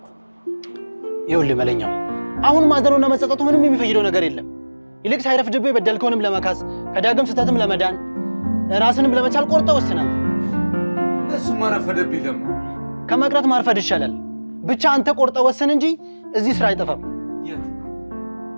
ይኸውልህ መለኛው፣ አሁን ማዘኑና መጸጸቱ ምንም የሚፈይደው ነገር የለም። ይልቅ ሳይረፍድብህ የበደልከውንም ለመካስ ከዳግም ስህተትም ለመዳን ራስንም ለመቻል ቆርጠህ ወስናል። እሱማ ረፈደብኝ። ደግሞ ከመቅረት ማርፈድ ይሻላል። ብቻ አንተ ቆርጠህ ወስን እንጂ እዚህ ስራ አይጠፋም። የት?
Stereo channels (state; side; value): inverted; both; correlation -1.00